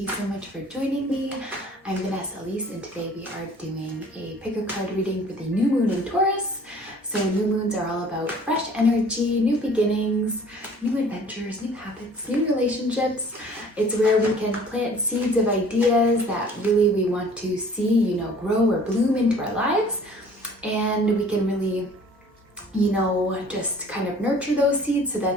so much for joining me. I'm Vanessa Elise, and today we are doing a pick a card reading for the new moon in Taurus. So new moons are all about fresh energy, new beginnings, new adventures, new habits, new relationships. It's where we can plant seeds of ideas that really we want to see, grow or bloom into our lives. And we can really, just kind of nurture those seeds so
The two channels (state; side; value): normal; both; correlation 0.51